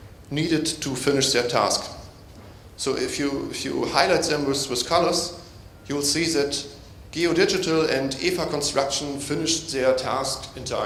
needed to finish their task. So if you highlight them with colors, you will see that Geodigital and EVA Construction finished their task in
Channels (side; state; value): both; identical; correlation 1.00